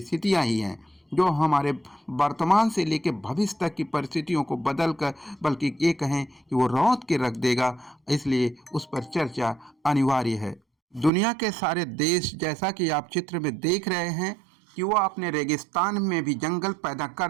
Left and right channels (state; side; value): drops out; left; at 11.1 s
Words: ही हैं, जो हमारे वर्तमान से लेकर भविष्य तक की परिस्थितियों को बदल कर, बल्कि ये कहें कि वो रौंद के रख देगा। इसलिए उस पर चर्चा अनिवार्य है। दुनिया के सारे देश, जैसा कि आप चित्र में देख रहे हैं कि वो अपने रेगिस्तान में भी जंगल पैदा